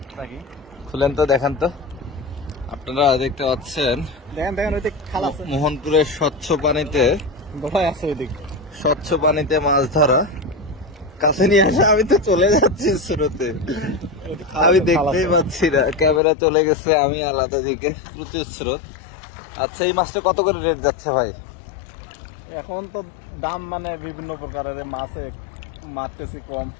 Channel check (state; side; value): drops out; right; at 16.2 s